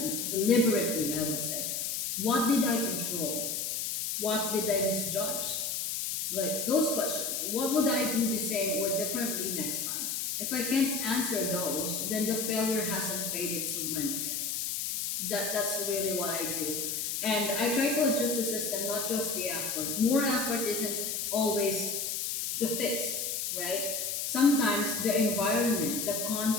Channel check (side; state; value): left; noise; hiss, 2 dB below the sound